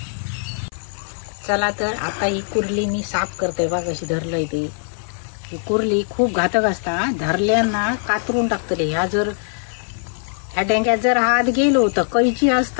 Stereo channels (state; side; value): silent; right; 58 dB below the other